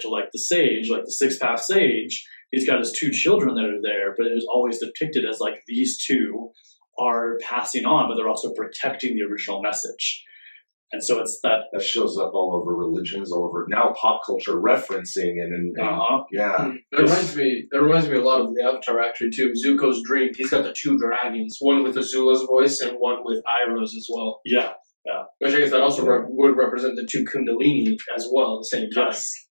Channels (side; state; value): both; inverted; correlation -1.00